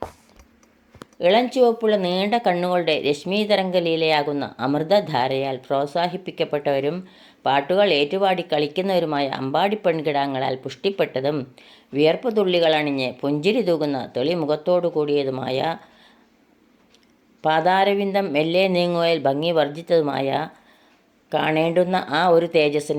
ഇളം ചുവപ്പുള്ള നീണ്ട കണ്ണുകളുടെ രശ്മീതരംഗലീലയാകുന്ന അമൃതധാരയാൽ പ്രോത്സാഹിപ്പിക്കപ്പെട്ടവരും പാട്ടുകൾ ഏറ്റുപാടി കളിക്കുന്നവരുമായ അമ്പാടി പെൺകിടാങ്ങളാൽ പുഷ്ടിപ്പെട്ടതും വിയർപ്പ് തുള്ളികളണിഞ്ഞ് പുഞ്ചിരി തൂകുന്ന തെളിമുഖത്തോടു കൂടിയതുമായ പാദാരവിന്ദം മെല്ലെ നീങ്ങുകയിൽ ഭംഗി വർദ്ധിച്ചതുമായ കാണേണ്ടുന്ന ആ ഒരു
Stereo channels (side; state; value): both; identical; correlation 1.00